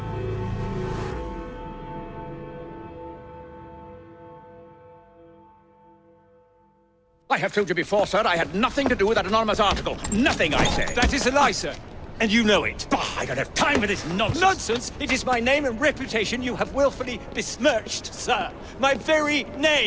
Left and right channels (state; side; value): identical; both; correlation 1.00